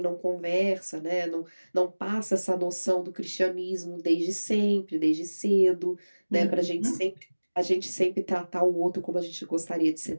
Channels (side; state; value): both; inverted; correlation -1.00